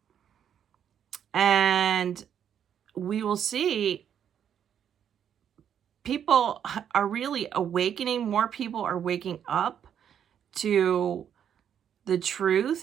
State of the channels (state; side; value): quieter; left; 8.9 dB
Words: And we will see people are really awakening. More people are waking up to the